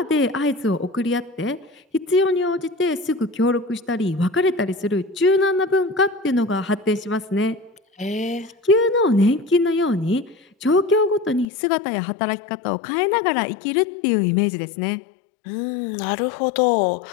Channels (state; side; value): drops out; right; at 11.5 s